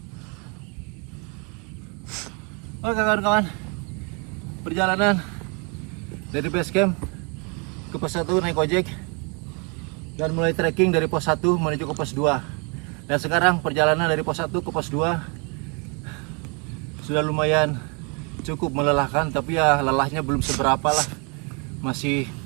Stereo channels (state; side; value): quieter; left; 33.7 dB